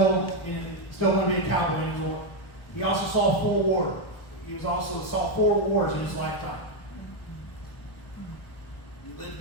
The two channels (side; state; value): right; late; 1.1 ms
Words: want to be a cowboy anymore. He also saw four wars. He saw 4 wars in his lifetime. You live to